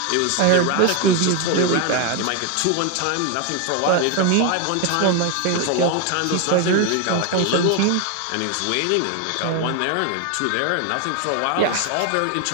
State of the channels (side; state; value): both; different; correlation 0.01